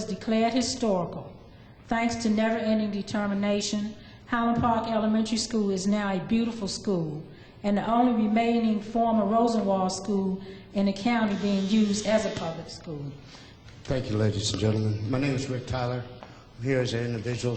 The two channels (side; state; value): both; identical; correlation 1.00